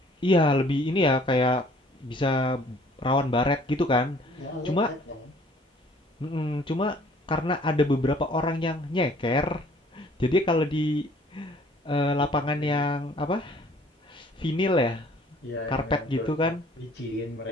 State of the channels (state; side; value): normal; both; correlation 0.56